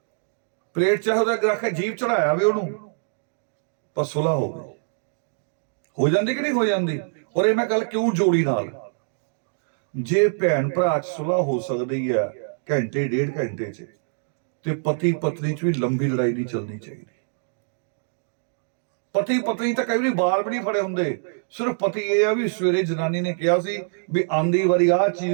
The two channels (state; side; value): silent; left; digital silence